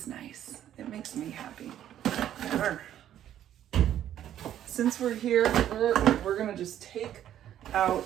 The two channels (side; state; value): left; quieter; 11.2 dB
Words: nice. It makes me happy. Since we're here, we're gonna just take out